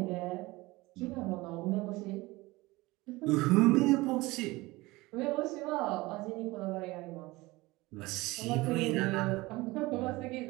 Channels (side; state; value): left; quieter; 21.1 dB